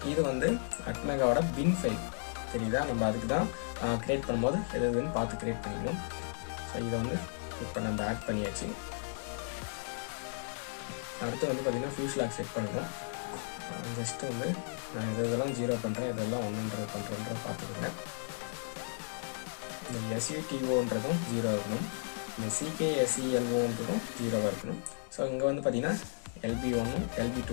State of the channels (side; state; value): right; silent; digital silence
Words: இது வந்து அட்மெகாவோட பின் ஃபைல் தெரியுதா. நம்ம அதுக்கு தான் க்ரியேட் பண்ணும்போது எதுன்னு பார்த்து க்ரியேட் பண்ணிக்கணும். ஸோ இதை வந்து இப்போ நம்ம ஆட் பண்ணியாச்சு. அடுத்து வந்து பார்த்திங்கன்னா ஃபியூஸ் லாக் செட் பண்ணணும். ஜஸ்ட்டு வந்து நான் இதெல்லாம் 0 பண்ணுறேன், இதெல்லாம் 100 பண்ணுறேன்றதை பார்த்துக்கோங்க. இந்த SUTOன்றதும் 0 இருக்கணும். இந்த CKSELOன்றதும் 0 இருக்கணும். ஸோ இங்கே வந்து பார்த்திங்கன்னா LB1ம்